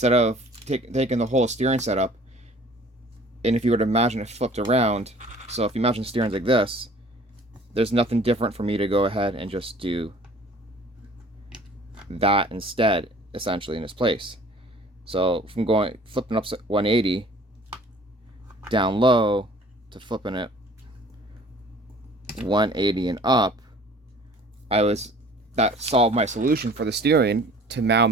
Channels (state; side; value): normal; both; correlation 0.50